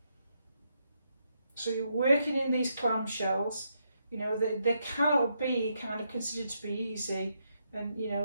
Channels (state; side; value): inverted; both; correlation -0.79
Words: So you're working in these clamshells. You know, they cannot be kind of considered to be easy, and you